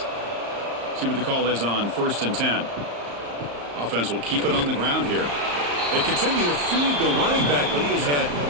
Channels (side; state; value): left; late; 34 ms